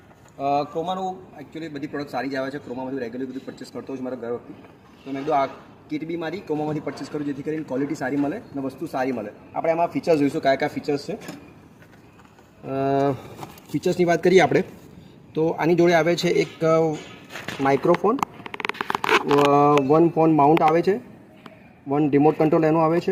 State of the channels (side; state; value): both; identical; correlation 1.00